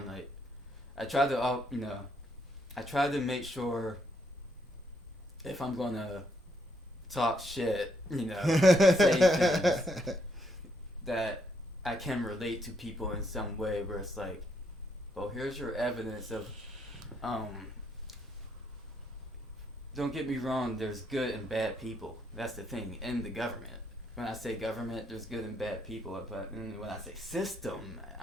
I try to make sure if I'm gonna talk shit, say things that I can relate to people in some way, where it's like, well, here's your evidence of, don't get me wrong, there's good and bad people. That's the thing, in the government. When I say government, there's good and bad people, but when I say system,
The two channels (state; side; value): normal; both; correlation 0.74